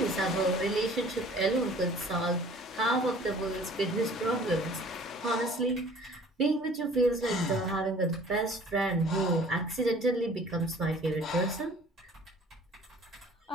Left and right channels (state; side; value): normal; both; correlation 0.50